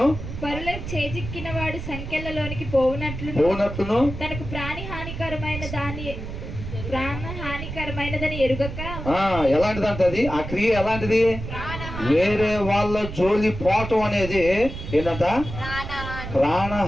పరుల చేజిక్కిన వాడు సంఖ్యలలోనికి పోవునట్లును తనకు ప్రాణహానికరమైనదని ఎరుగక. ఎలాంటిదంట అది? ఆ క్రియ ఎలాంటిది? వేరే వాళ్ళ జోలి పోవటం అనేది ఏంటంట?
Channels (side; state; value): right; noise; rumble, 8 dB below the sound